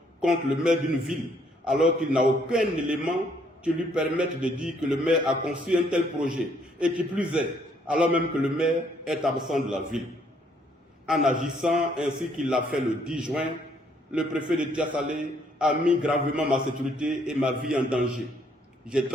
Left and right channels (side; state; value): both; normal; correlation 0.67